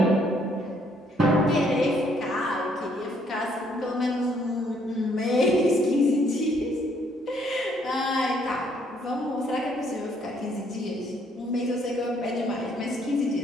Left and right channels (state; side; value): normal; both; correlation 0.67